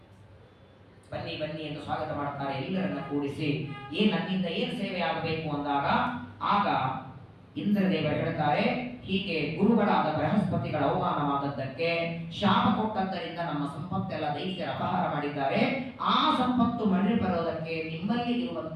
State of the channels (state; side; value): identical; both; correlation 1.00